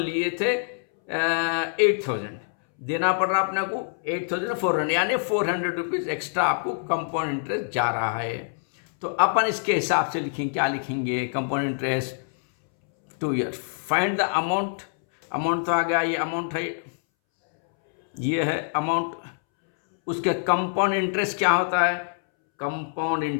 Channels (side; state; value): right; silent; 62 dB below the other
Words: थे 8,000, देना पड़ रहा अपने को 8,400, यानी 400 रुपीज़ एक्स्ट्रा आपको कंपाउंड इंटरेस्ट जा रहा है। तो अपन इसके हिसाब से लिखेंगे, क्या लिखेंगे, compound interest 2 year. Find the amount, amount तो आ गया, ये अमाउंट है, ये है अमाउंट। उसके कंपाउंड इंटरेस्ट क्या होता है, कंपाउंड